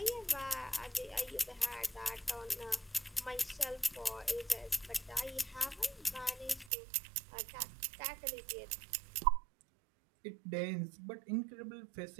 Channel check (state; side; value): drops out; left; at 6.7 s